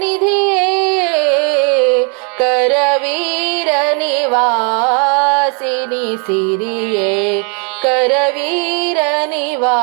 ನಿಧಿಯೇ ಕರವೀರ ನಿವಾಸಿನಿ ಸಿರಿಯೇ ಕರವೀರ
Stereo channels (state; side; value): quieter; left; 37.8 dB